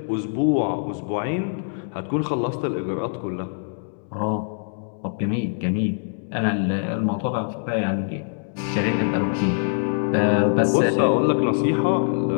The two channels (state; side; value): silent; right; digital silence